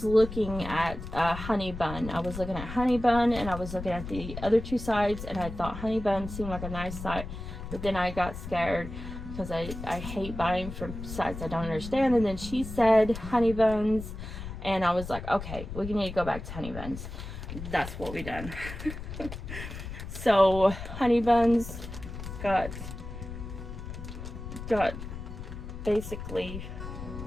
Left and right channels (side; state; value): left; noise; rumble, 9 dB below the sound